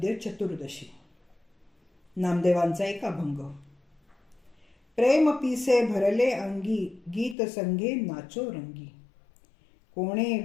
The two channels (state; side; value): drops out; right; at 7.4 s